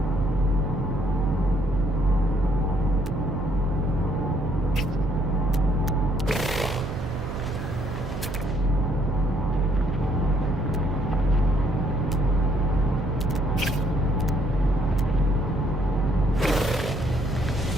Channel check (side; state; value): right; noise; hum, 7 dB below the sound